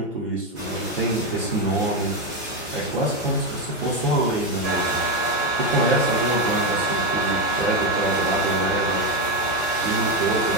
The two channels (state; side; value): normal; both; correlation 0.10